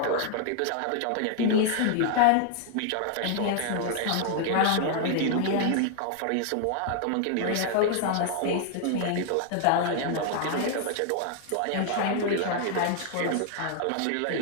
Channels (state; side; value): different; both; correlation 0.00